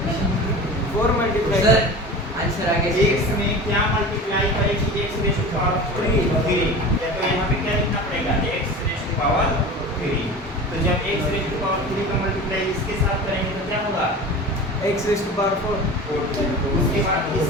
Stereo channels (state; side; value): normal; both; correlation 0.34